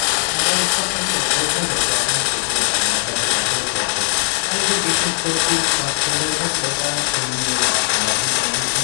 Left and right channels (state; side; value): silent; right; 67 dB below the other